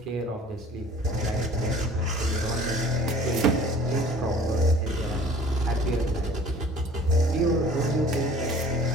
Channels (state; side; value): normal; both; correlation 0.49